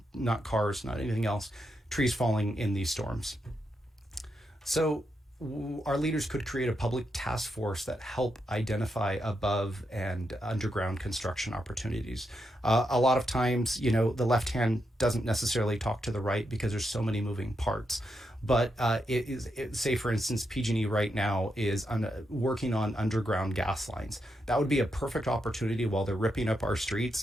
cars, not anything else. Trees falling in these storms. So our leaders could create a public task force that help identify above and underground construction opportunities. A lot of times, the left hand doesn't necessarily talk to the right because there's so many moving parts. But say, for instance, PG&E right now is working on underground gas lines. That would be a perfect opportunity while they're ripping up our streets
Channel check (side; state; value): both; normal; correlation 0.83